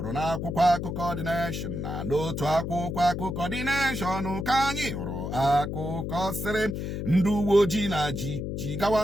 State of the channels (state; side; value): noise; left; hum, 4 dB below the sound